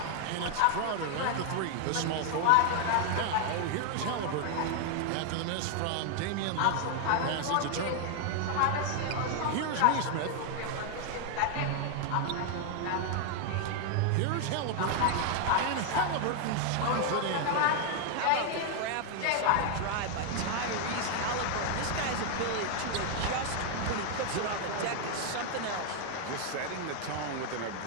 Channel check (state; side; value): different; both; correlation 0.00